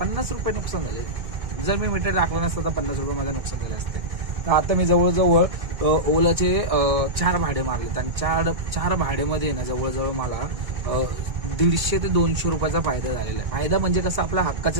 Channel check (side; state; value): left; late; 1.6 ms